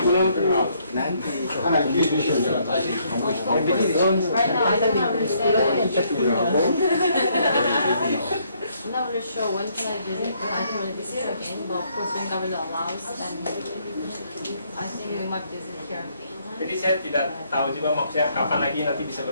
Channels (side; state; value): both; inverted; correlation -0.69